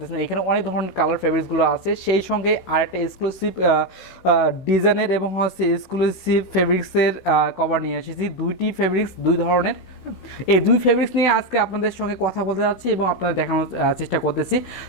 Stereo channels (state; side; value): late; right; 16 ms